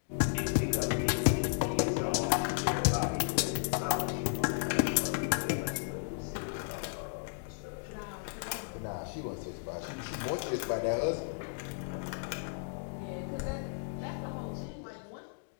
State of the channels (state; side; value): silent; right; digital silence